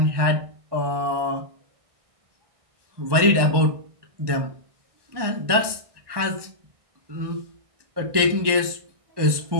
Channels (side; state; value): left; late; 1.2 ms